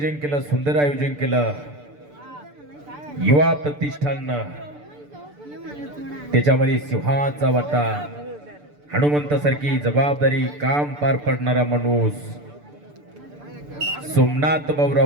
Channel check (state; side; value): late; left; 6.8 ms